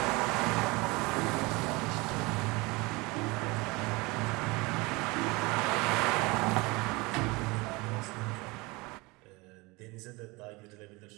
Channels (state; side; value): quieter; left; 24.6 dB